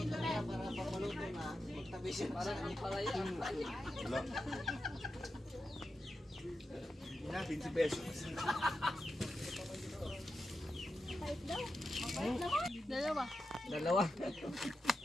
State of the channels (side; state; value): both; normal; correlation 0.89